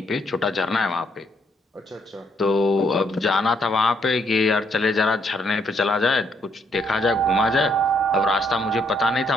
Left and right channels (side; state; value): both; normal; correlation 0.72